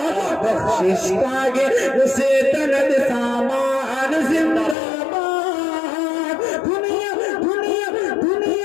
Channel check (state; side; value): drops out; right; at 4.8 s